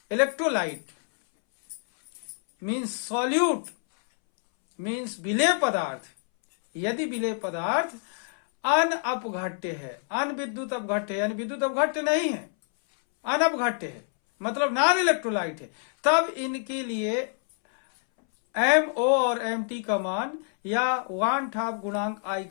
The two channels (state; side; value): silent; right; 60 dB below the other